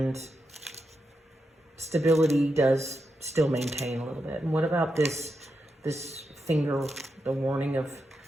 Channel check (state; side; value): normal; both; correlation 0.86